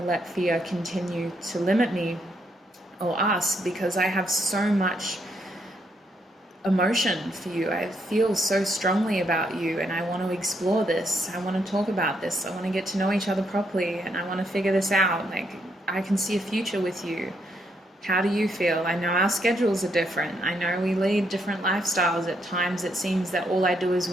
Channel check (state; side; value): normal; both; correlation 0.75